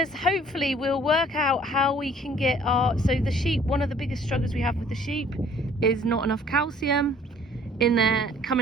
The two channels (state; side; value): normal; both; correlation 0.55